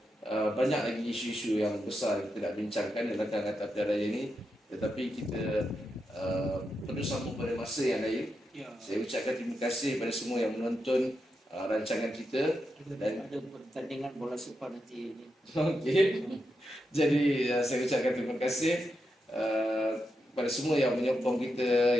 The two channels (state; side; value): normal; both; correlation 0.86